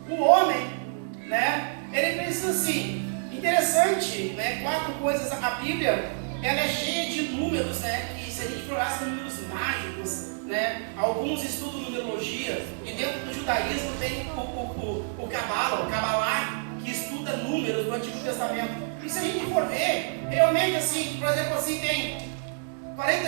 o homem, né? Ele precisa assim. Interessante, né? 4 coisas. A Bíblia, ela é cheia de números, né? Que se a gente for são números mágicos, né? Alguns estudam numerologia e dentro do judaísmo tem o Kabbalah, que estuda números do Antigo Testamento. E se a gente for ver, realmente assim, por exemplo, assim, tem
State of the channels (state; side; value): silent; left; 60 dB below the other